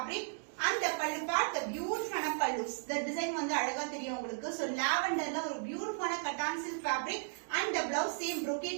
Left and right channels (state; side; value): silent; left; digital silence